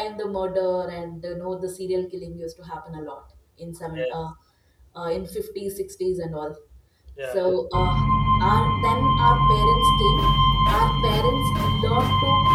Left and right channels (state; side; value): identical; both; correlation 1.00